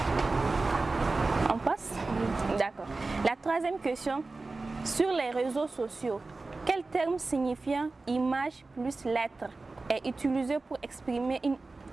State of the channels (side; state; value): left; quieter; 3.5 dB